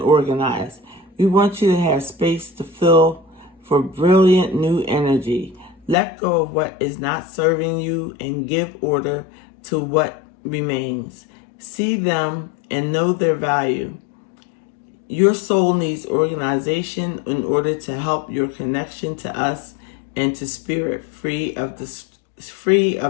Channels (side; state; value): right; drops out; at 6.0 s